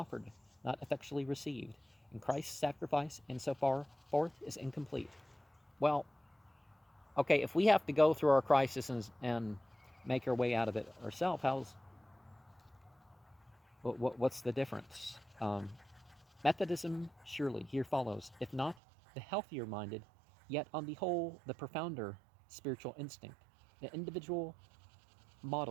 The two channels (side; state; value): left; drops out; at 18.8 s